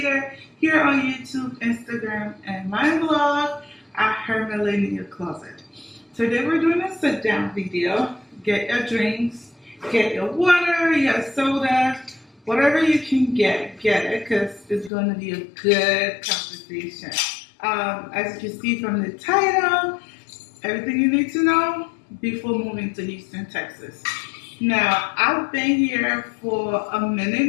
here on YouTube, Instagram, and my blog at Her Millennial Closet. Today we're doing a sit-down video. Get your drinks, get your water, your soda, whatever you can get it because it's going to be a good conversation. As you can see from the title, everything you need to know before moving to Houston, Texas. Now, I've been here for a minute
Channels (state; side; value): drops out; right; at 14.9 s